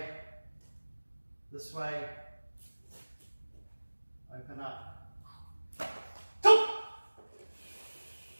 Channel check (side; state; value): both; inverted; correlation -1.00